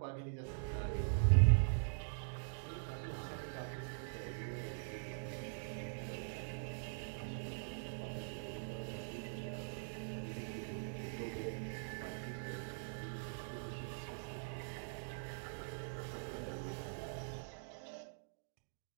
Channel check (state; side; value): silent; left; digital silence